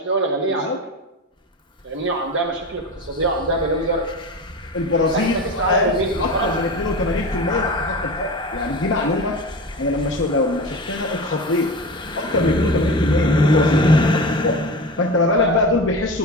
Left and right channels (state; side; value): normal; both; correlation 0.28